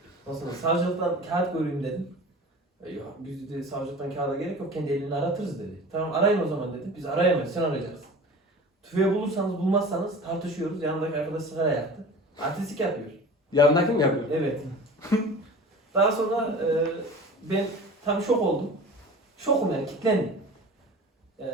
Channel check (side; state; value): both; normal; correlation 0.38